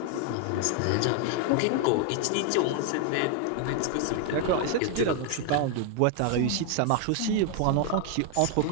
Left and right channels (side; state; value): both; different; correlation 0.00